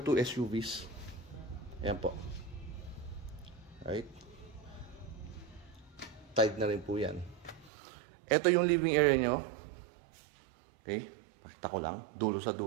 SUVs. Ayan po. Right. Tied na rin po yan. Ito yung living area nyo. Okay, pakita ko lang, dulo sa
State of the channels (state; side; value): drops out; left; at 7.7 s